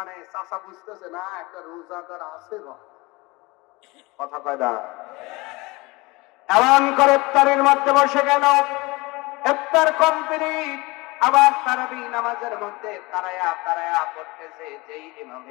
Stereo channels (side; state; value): right; quieter; 23.5 dB